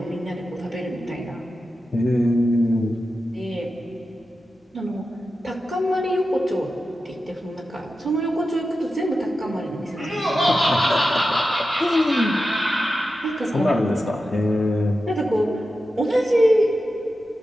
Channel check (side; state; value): both; normal; correlation 0.91